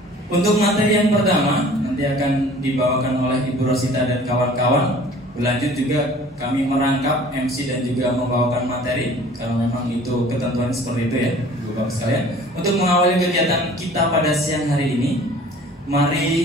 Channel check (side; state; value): both; normal; correlation 0.48